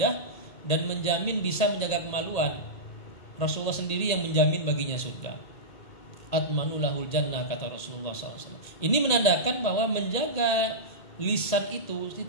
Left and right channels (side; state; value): right; late; 1.8 ms